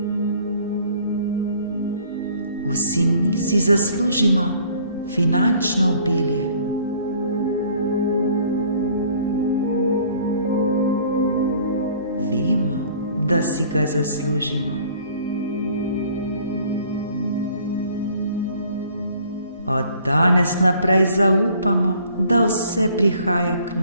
Vsi mi si zaslužimo finančno obilje. Vemo, da si ga zaslužimo. Od danes naprej zaupamo, da vse prihaja k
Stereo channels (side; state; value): both; inverted; correlation -0.56